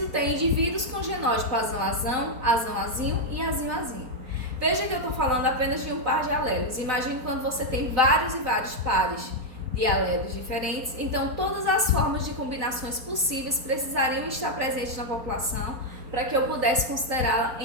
ter indivíduos com genótipo azão-azão, azão-azinho e azinho-azinho. Veja que eu estou falando apenas de um par de alelos. Imagine quando você tem vários e vários pares de alelos diferentes. Então, todas as formas de combinações possíveis precisariam estar presentes na população para que eu pudesse considerá-la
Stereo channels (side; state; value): left; late; 4.3 ms